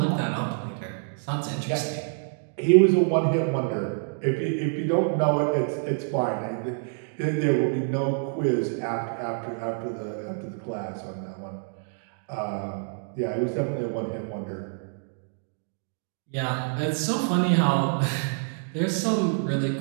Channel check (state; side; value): silent; left; 60 dB below the other